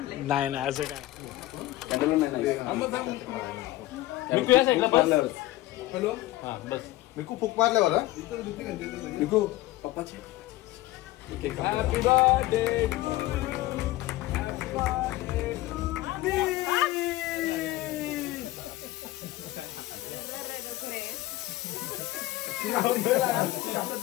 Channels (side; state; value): right; quieter; 16.8 dB